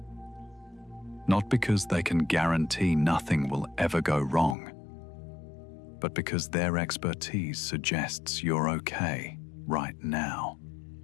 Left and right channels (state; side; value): drops out; right; at 4.5 s